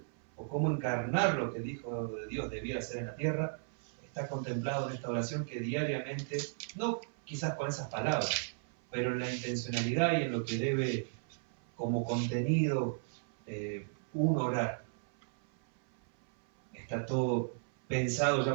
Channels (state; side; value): silent; left; 54 dB below the other